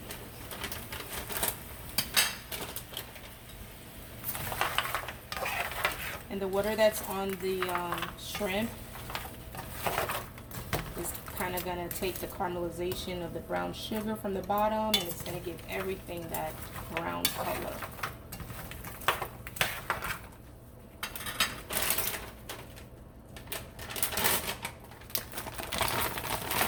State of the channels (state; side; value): identical; both; correlation 1.00